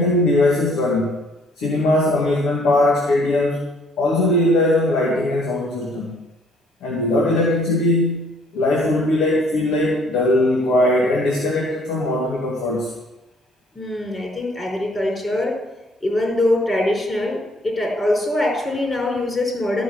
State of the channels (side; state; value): both; normal; correlation 0.61